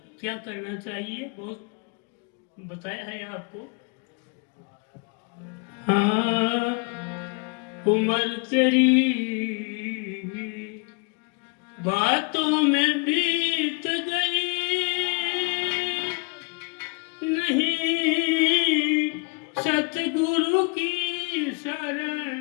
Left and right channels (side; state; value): right; quieter; 32.2 dB